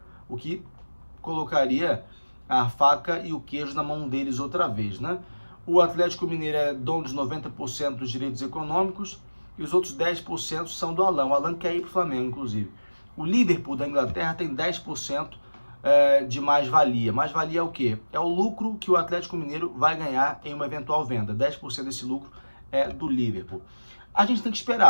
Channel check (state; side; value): inverted; both; correlation -1.00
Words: o que colocaria a faca e o queijo na mão deles outra vez, né? O Atlético Mineiro é dono de 90% dos direitos econômicos e os outros 10% são do Alan. O Alan quer ir para o Flamengo, inclusive. O Liverpool da Inglaterra tem 10% de mais-valia. Mais-valia é o quê? É o lucro que o Atlético Mineiro vai ganhar em uma eventual venda. 10% desse lucro é do Liverpool. A gente tem que